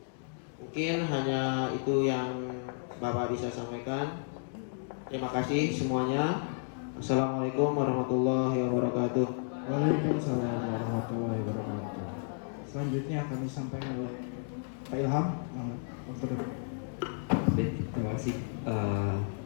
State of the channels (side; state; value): right; silent; digital silence